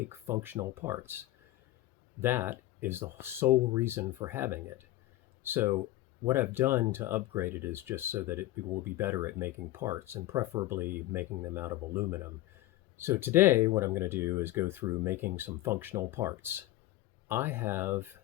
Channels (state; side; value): quieter; right; 16.2 dB